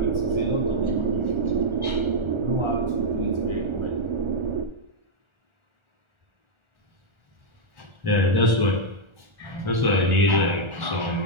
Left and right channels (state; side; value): late; left; 1.4 ms